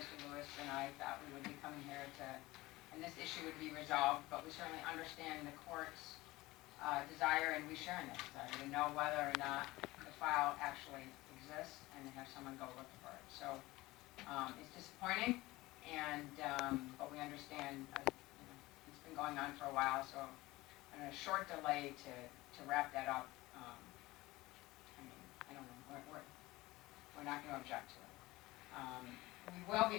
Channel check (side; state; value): right; quieter; 19.6 dB